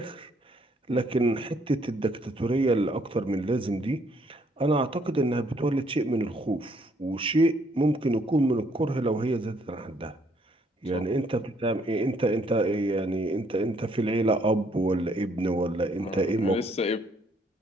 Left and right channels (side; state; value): both; normal; correlation 0.67